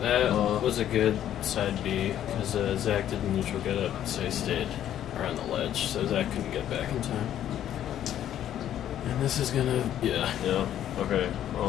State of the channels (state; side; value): quieter; right; 11.1 dB